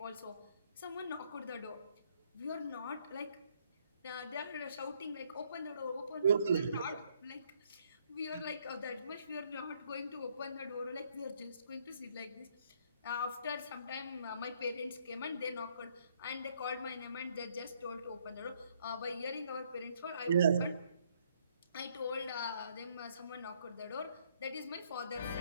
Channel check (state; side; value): inverted; both; correlation -0.68